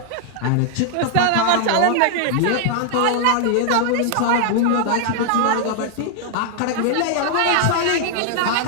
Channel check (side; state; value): both; different; correlation 0.00